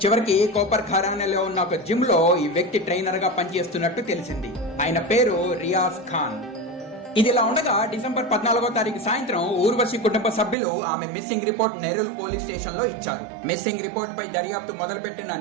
చివరికి కోపర్ ఖైరానేలో ఉన్న ఒక జిమ్ లో ఈ వ్యక్తి ట్రైనర్ గా పనిచేస్తున్నట్టు తెలిసింది. ఆయన పేరు రియాజ్ ఖాన్. ఇదిలా ఉండగా డిసెంబర్ 14వ తారీఖు సాయంత్రం ఊర్వశి కుటుంబ సభ్యులు ఆమె మిస్సింగ్ రిపోర్ట్ నెరూల్ పోలీస్ స్టేషన్ లో ఇచ్చారు. మిస్సింగ్ రిపోర్ట్ పై దర్యాప్తు మొదలుపెట్టిన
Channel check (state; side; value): drops out; left; at 10.6 s